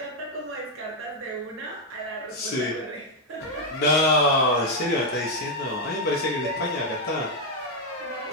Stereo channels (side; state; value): both; normal; correlation 0.02